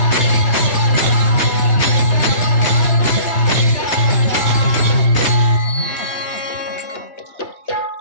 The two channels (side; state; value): right; late; 3.2 ms